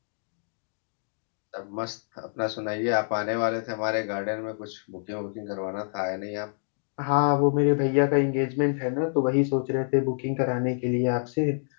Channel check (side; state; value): right; silent; digital silence